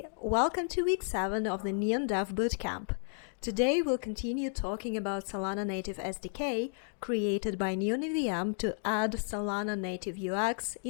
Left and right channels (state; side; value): silent; right; digital silence